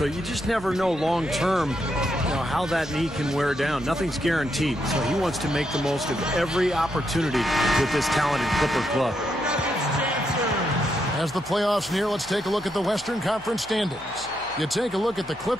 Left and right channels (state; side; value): noise; left; hum, 22 dB below the sound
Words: you just never know long term, how that knee can wear down. Nothing's guaranteed. So he wants to make the most of every opportunity with this talented Clipper club. As the playoffs near, let's take a look at the Western Conference standings. You take a look at the